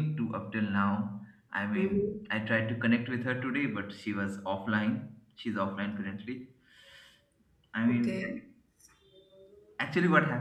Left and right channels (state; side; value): identical; both; correlation 1.00